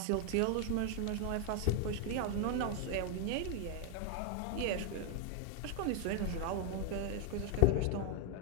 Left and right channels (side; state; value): both; different; correlation 0.00